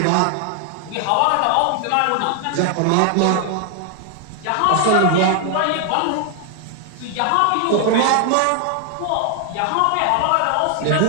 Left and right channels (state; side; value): different; both; correlation 0.00